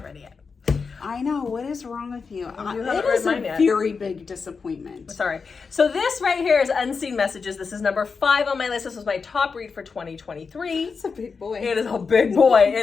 read it yet. I know. What is wrong with you? It is a very big disappointment. Sorry. So this right here is Unseen Messages. This is number 5 on my list. This was my top read for 2023. It's a big boy. It is a big boy.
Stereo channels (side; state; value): right; quieter; 5.1 dB